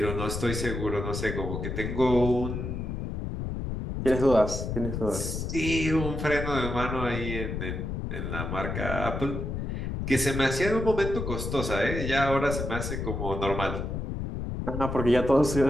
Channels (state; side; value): noise; left; rumble, 4 dB below the sound